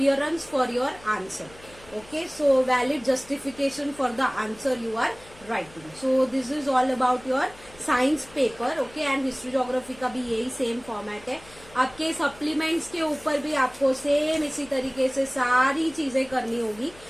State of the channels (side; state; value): left; noise; hum, 23 dB below the sound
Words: for your answer. Okay, so valid justification for the answer you are writing. So this is all about your science paper. Okay, and history geography का भी यही सेम फॉर्मेट है। आपके सप्लीमेंट्स के ऊपर भी आपको सेम इसी तरीके से सारी चीजें करनी होगी।